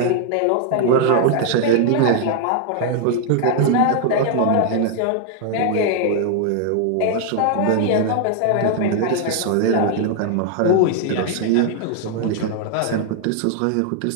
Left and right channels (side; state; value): both; different; correlation 0.00